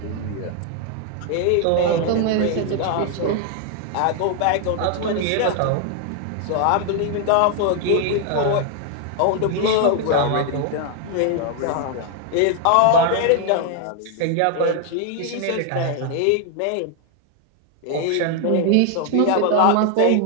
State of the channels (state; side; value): different; both; correlation 0.00